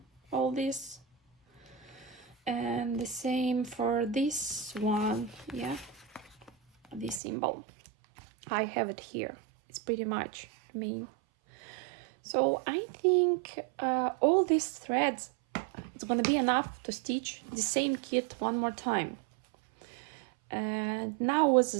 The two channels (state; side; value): drops out; left; at 7.2 s